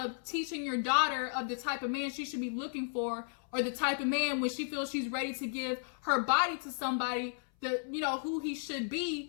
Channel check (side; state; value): right; silent; 55 dB below the other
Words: teaching your daughter of the type of man she should be looking for, or the type of man when she feels she's ready to give her body to somebody, who he should